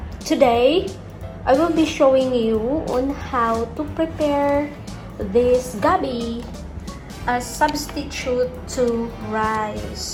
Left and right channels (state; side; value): identical; both; correlation 1.00